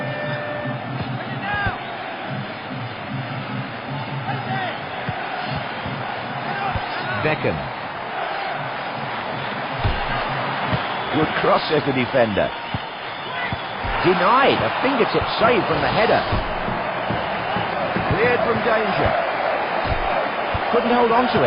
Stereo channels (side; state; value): both; identical; correlation 1.00